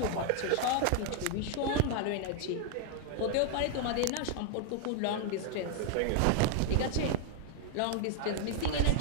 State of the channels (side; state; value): both; different; correlation 0.00